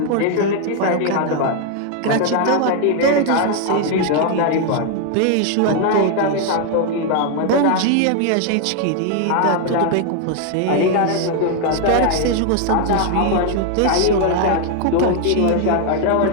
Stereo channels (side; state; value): both; different; correlation 0.00